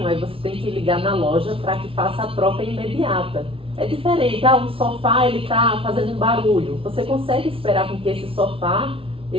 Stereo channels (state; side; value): late; left; 0.26 ms